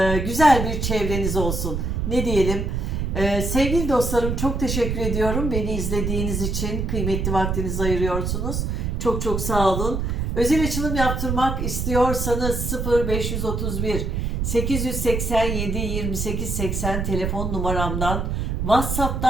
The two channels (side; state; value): right; noise; rumble, 1 dB below the sound